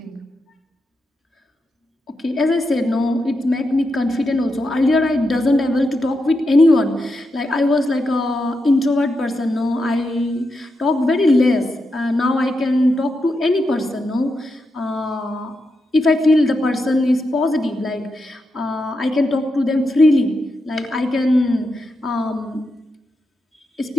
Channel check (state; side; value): normal; both; correlation 0.86